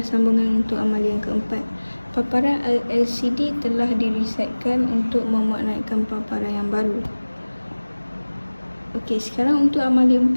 sambungan untuk amali yang keempat. Paparan LCD telah diresetkan untuk memuat naikkan paparan yang baru. Okey, sekarang untuk amali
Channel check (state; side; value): inverted; both; correlation -1.00